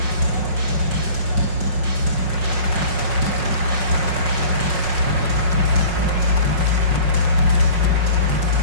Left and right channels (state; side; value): late; left; 5.5 ms